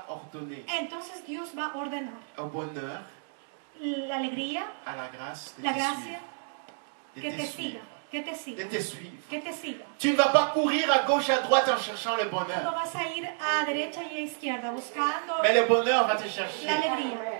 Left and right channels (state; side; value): silent; left; digital silence